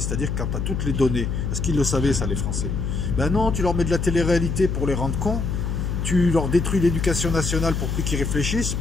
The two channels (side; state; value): left; noise; hum, 1 dB below the sound